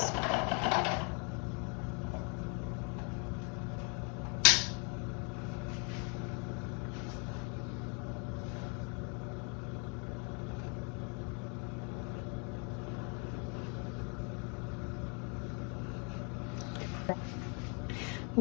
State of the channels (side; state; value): right; quieter; 36.1 dB